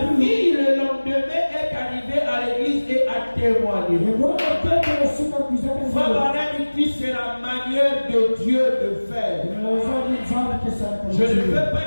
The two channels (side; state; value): both; inverted; correlation -1.00